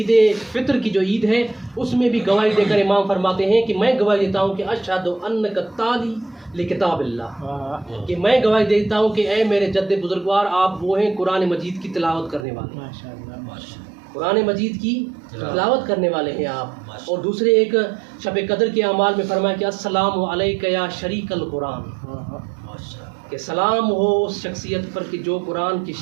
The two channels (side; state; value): left; drops out; at 12.5 s